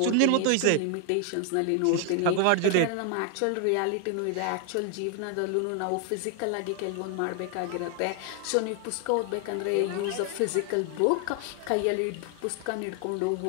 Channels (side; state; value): both; different; correlation 0.00